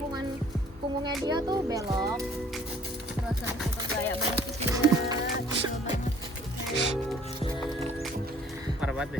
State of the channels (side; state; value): both; normal; correlation 0.56